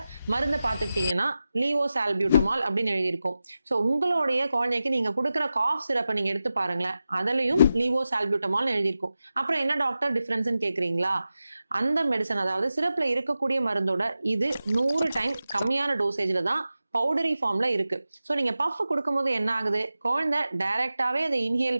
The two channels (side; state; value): both; inverted; correlation -0.93